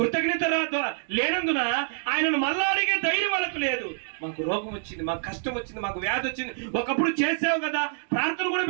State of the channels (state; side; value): silent; left; digital silence